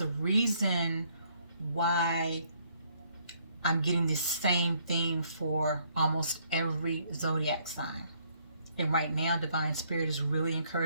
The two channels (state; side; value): inverted; both; correlation -0.67